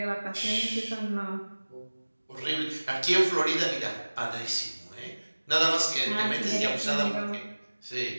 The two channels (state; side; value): inverted; both; correlation -1.00